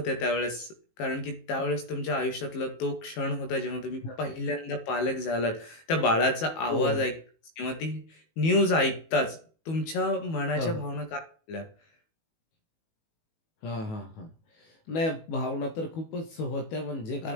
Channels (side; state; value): right; late; 18 ms